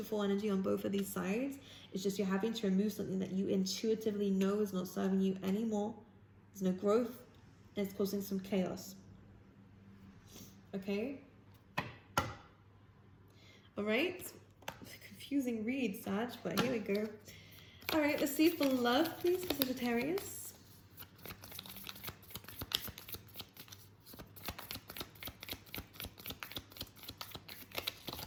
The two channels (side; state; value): both; identical; correlation 1.00